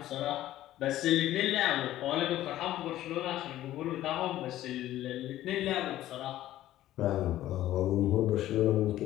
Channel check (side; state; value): right; quieter; 14.0 dB